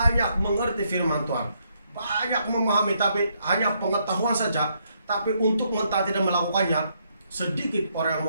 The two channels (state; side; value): inverted; both; correlation -0.74